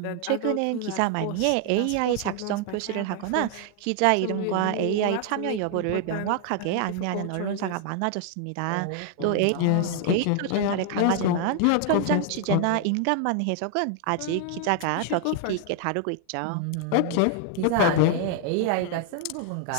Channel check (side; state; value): both; different; correlation 0.00